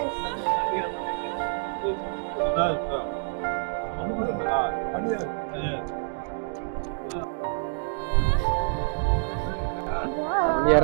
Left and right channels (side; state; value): left; silent; digital silence